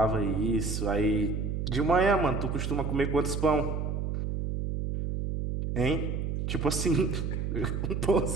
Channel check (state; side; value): noise; right; hum, 2 dB below the sound